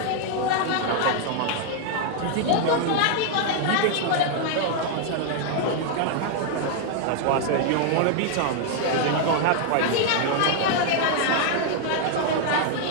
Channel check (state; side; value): different; both; correlation 0.00